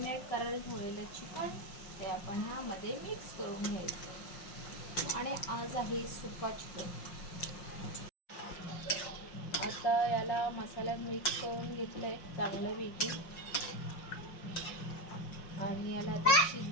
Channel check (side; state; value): right; late; 5.6 ms